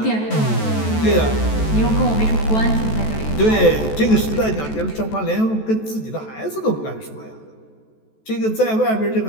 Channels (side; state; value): right; late; 14 ms